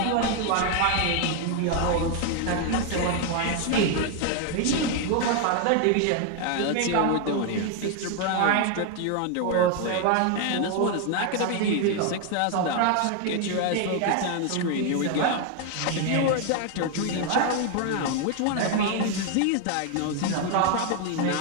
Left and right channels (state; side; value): different; both; correlation 0.01